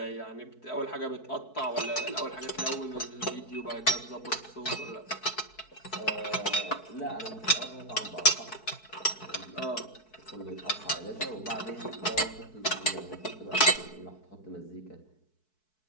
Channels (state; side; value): late; right; 4.6 ms